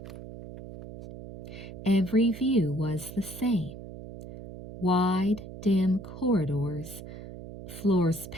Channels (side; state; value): right; noise; hum, 13 dB below the sound